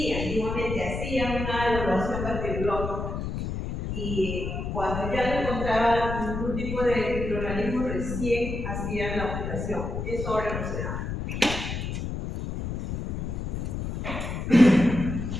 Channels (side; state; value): left; noise; rumble, 4 dB below the sound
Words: antiguamente hacían una evaluación bacteriológica. Y cuando ya no encontraban ningún tipo de microorganismo, recién hacían la operación. Eso ahora no se da.